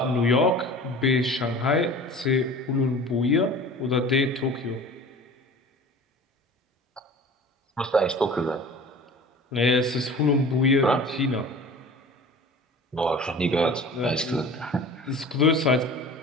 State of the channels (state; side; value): normal; both; correlation 0.40